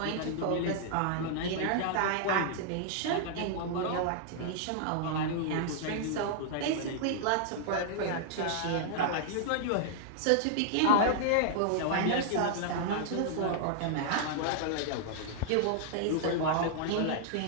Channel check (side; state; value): both; different; correlation -0.01